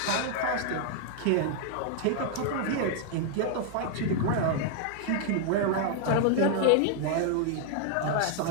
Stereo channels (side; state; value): both; different; correlation 0.00